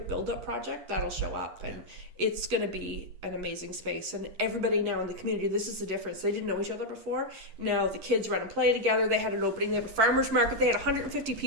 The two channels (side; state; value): left; late; 8.4 ms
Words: Build-Up Project, that'll show up. And it's going to be an amazing space. And everybody now in the community, this is the difference. They didn't know each other before. Now the kids run and play together. They had an opening. They have a farmer's market. They had 150